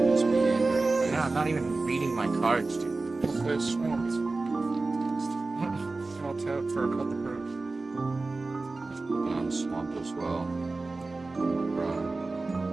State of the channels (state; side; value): quieter; left; 3.5 dB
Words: this meandering. No, I'm not even reading my cards, dude. Good swamps. I'll tap for a couple birds. Open on the swamp as well. Run.